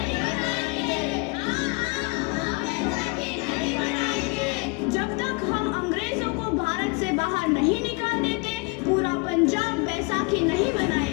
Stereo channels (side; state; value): right; quieter; 29.5 dB